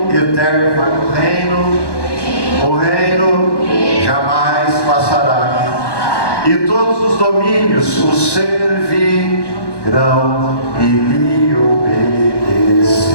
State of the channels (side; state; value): right; late; 1.1 ms